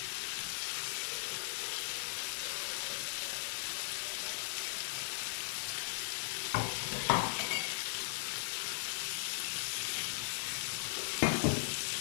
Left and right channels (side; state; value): right; silent; digital silence